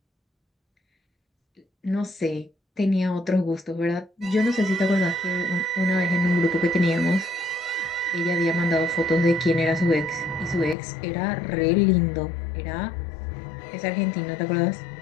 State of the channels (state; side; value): drops out; right; at 10.8 s